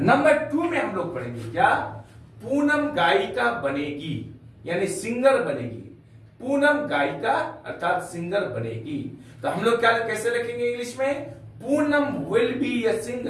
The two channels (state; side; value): identical; both; correlation 1.00